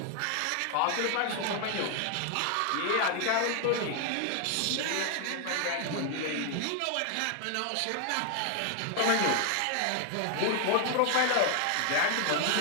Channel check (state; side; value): different; both; correlation 0.00